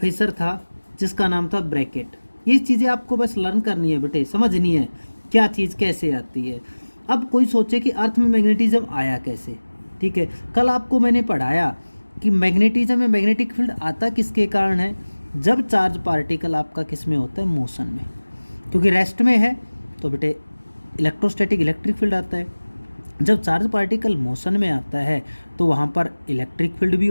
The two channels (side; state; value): both; inverted; correlation -1.00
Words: था जिसका नाम था ब्रैकेट। ये चीज़ें आपको बस लर्न करनी है बेटे, समझनी है क्या चीज़ कैसे आती है। अब कोई सोचे कि अर्थ में मैग्नेटिज्म आया कैसे, ठीक है। कल आपको मैंने पढ़ाया कि मैग्नेटिज्म में मैग्नेटिक फील्ड आता किसके कारण है, जब चार्ज पार्टिकल आपका किस में होता है, मोशन में, क्योंकि रेस्ट में है तो बेटे इलेक्ट्रोस्टैटिक इलेक्ट्रिक फील्ड आता है। जब चार्ज पार्टिकल मोशन में आता है तो वहाँ पर इलेक्ट्रिक फील्ड भी